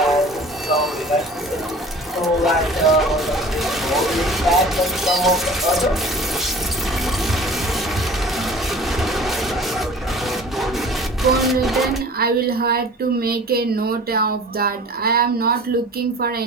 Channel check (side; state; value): both; normal; correlation 0.44